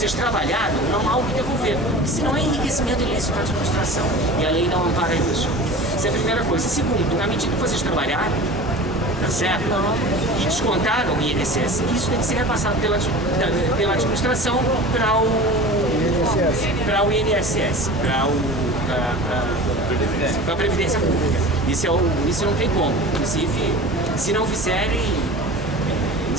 trabalharam, não há o que devolver, porque senão é enriquecimento ilícito da administração e a lei não ampara isso. Essa é a primeira coisa. Segundo, na medida que vocês trabalharam, tá certo? E descontaram o INSS, isso tem que ser repassado pela administração para o INSS, para a Previdência Pública. Isso não tem como. Inclusive, se não fizerem,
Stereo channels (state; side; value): normal; both; correlation 0.37